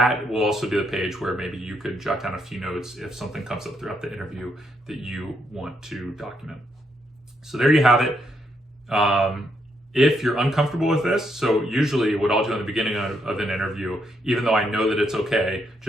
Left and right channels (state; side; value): normal; both; correlation 0.77